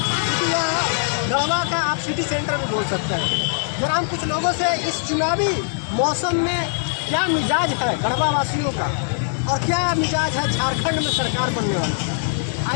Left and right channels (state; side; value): silent; right; digital silence